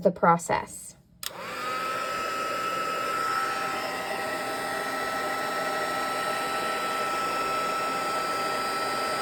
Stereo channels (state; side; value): identical; both; correlation 1.00